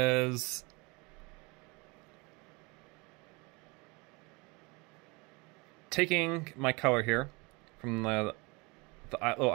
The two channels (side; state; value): left; quieter; 27.4 dB